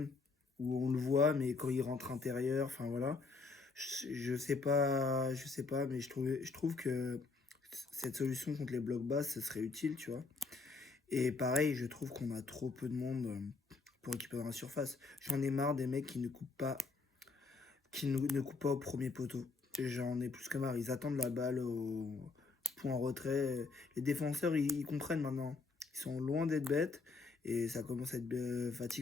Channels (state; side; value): quieter; right; 4.2 dB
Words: où on le voit, mais quand il rentre intérieur, enfin voilà. Je sais pas, mais je trouve que cette solution contre les blocs bas, ce serait utile, tu vois. Et pareil, je trouve qu'on a trop peu de monde pour équiper dans la surface. J'en ai marre des mecs qui ne coupent pas, ne coupent pas au premier poteau. J'en ai plus que marre. Ils attendent la balle au point retrait. Les défenseurs, ils comprennent maintenant. Ils sont loin d'être bêtes et ça commence à être